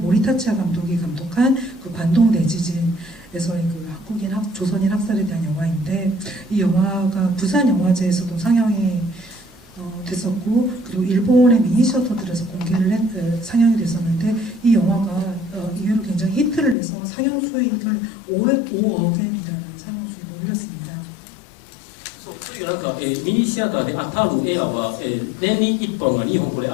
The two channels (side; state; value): right; drops out; at 16.8 s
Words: 감독이 감독한 그 관동 대지진에서의 그 한국인 조선인 학살에 대한 영화인데, 이 영화가 부산 영화제에서도 상영이 됐었고, 그리고 일본의 미니시어터들에서 상영이 됐었는데, 이 영화가 이후로 굉장히 히트를 내서 상영 수익을 5억엔이라는 상영 수익을 올렸습니다. そういうなんか、ミニシアターで当たる映画は、年に1本が2本これ